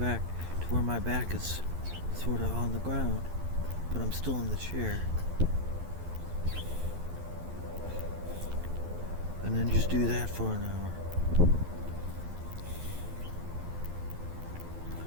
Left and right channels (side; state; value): left; late; 12 ms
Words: to where my back is sort of on the ground, but I'm still in the chair. And then just do that for an hour.